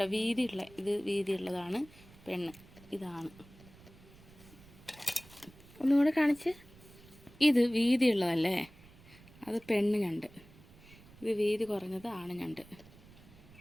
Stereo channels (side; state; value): right; noise; rumble, 22 dB below the sound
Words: വീതിയുള്ള, ഇത് വീതിയുള്ളതാണ് പെണ്ണ്, ഇതാണ്. ഒന്നുകൂടെ കാണിച്ച്. ഇത് വീതിയുള്ളതല്ലേ, അത് പെണ്ണ് ഞണ്ട്. ഇത് വീതി കുറഞ്ഞത് ആണ് ഞണ്ട്.